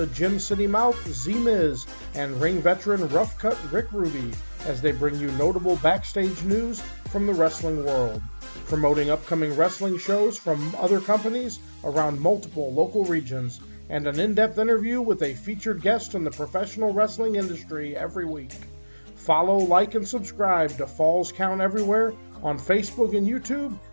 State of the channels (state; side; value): inverted; both; correlation -1.00